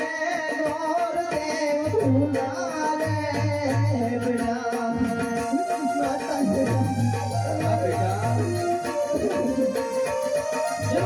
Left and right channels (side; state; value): both; identical; correlation 1.00